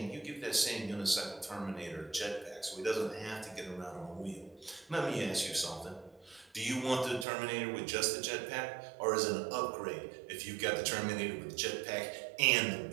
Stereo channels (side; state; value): left; drops out; at 7.2 s